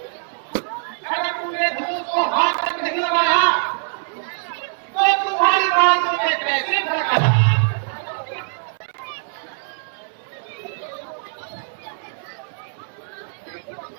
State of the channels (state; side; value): silent; left; digital silence